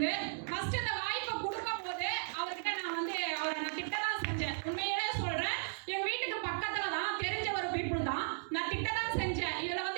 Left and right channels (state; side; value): silent; left; digital silence